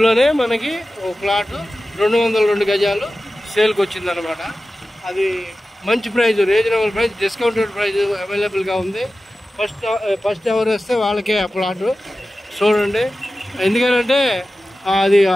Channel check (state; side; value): normal; both; correlation 0.95